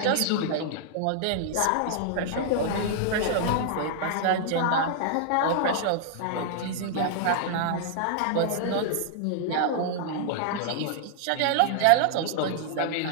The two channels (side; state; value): both; different; correlation -0.01